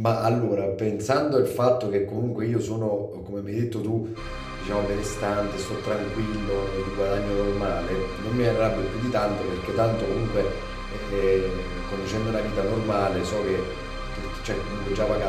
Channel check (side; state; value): both; identical; correlation 1.00